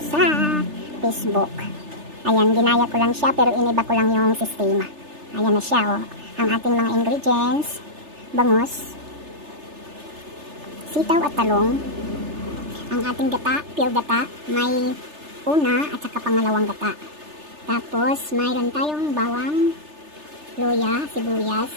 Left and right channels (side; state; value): left; late; 3.3 ms